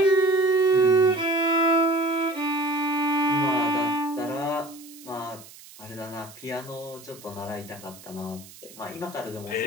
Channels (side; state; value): right; noise; hiss, 20 dB below the sound